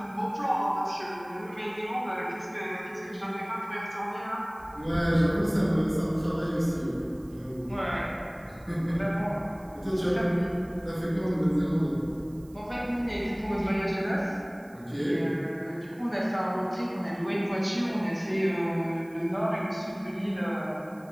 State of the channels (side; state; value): right; noise; hiss, 28 dB below the sound